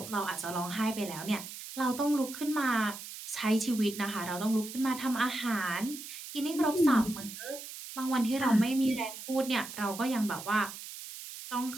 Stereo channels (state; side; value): noise; right; hiss, 11 dB below the sound